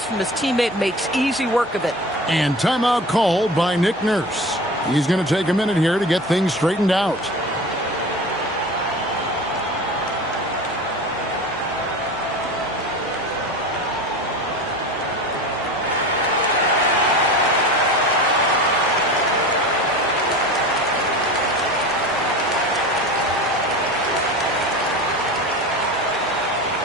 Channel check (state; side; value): normal; both; correlation 0.33